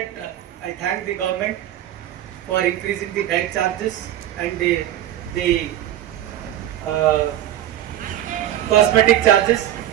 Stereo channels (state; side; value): quieter; left; 12.3 dB